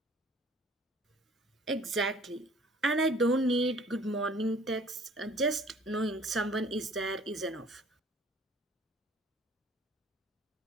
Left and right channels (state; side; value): normal; both; correlation 0.53